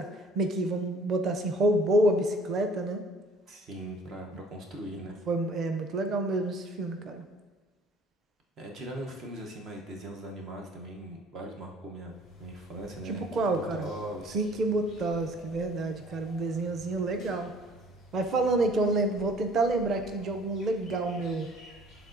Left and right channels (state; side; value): normal; both; correlation 0.54